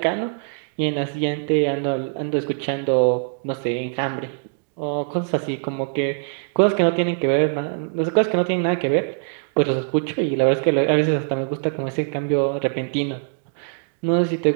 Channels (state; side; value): silent; left; digital silence